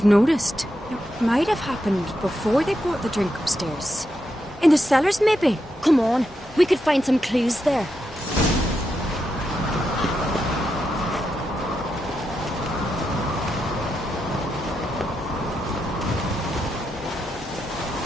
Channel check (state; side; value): normal; both; correlation 0.85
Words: noticed. It might have happened before they brought the drink upstairs. In the cellars, maybe? Come on, we could find some clues there.